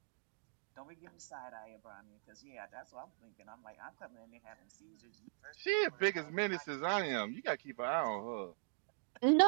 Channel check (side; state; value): left; silent; digital silence